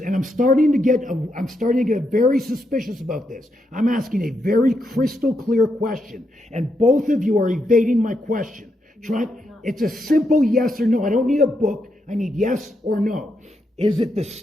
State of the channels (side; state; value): both; normal; correlation 0.81